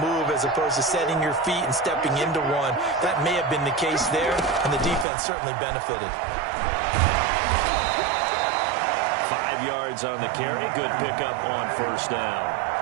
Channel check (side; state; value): left; drops out; at 5.1 s